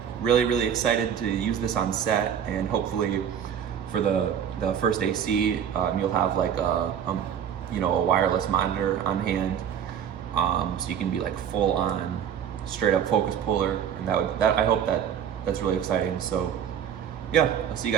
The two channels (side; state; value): left; quieter; 8.7 dB